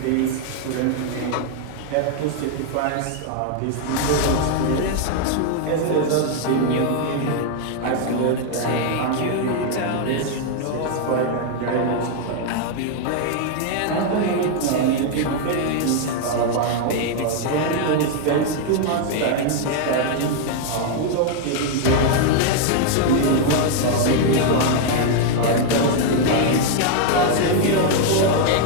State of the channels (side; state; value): both; different; correlation 0.00